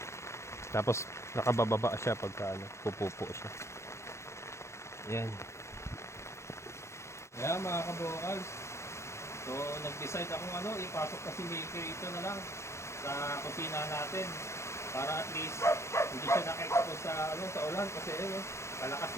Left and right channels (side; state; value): right; late; 0.13 ms